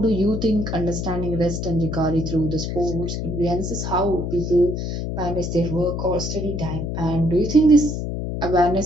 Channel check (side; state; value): left; noise; hum, 3 dB below the sound